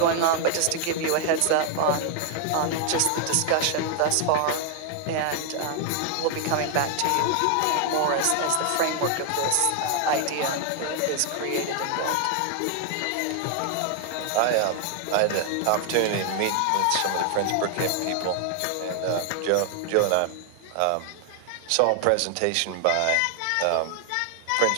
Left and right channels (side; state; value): both; different; correlation 0.00